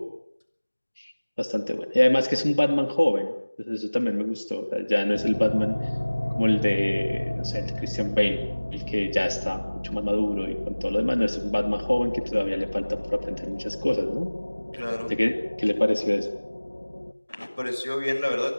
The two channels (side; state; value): both; inverted; correlation -1.00